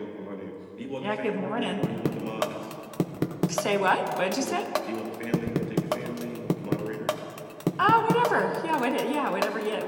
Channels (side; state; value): both; identical; correlation 1.00